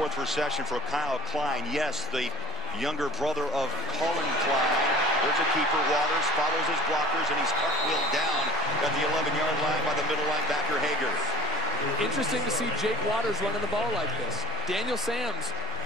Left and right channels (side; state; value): both; normal; correlation 0.41